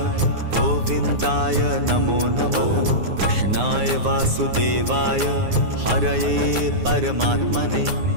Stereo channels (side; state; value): left; late; 9.6 ms